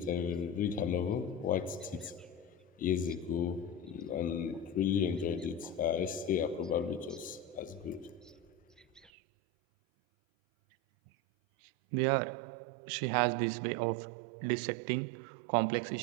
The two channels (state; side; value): drops out; left; at 9.1 s